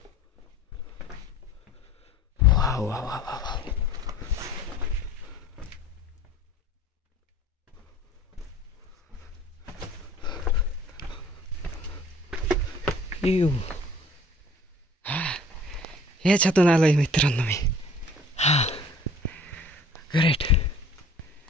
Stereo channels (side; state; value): both; normal; correlation 0.50